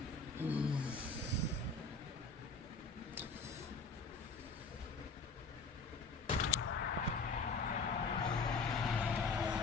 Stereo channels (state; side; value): quieter; right; 4.1 dB